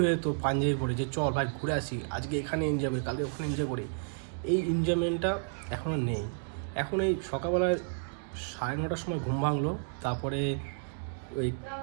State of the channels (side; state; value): left; silent; digital silence